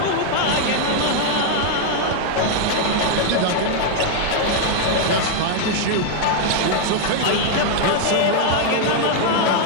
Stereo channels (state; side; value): different; both; correlation 0.00